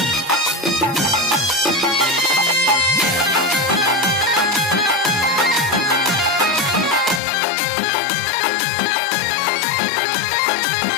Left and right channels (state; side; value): drops out; right; at 7.2 s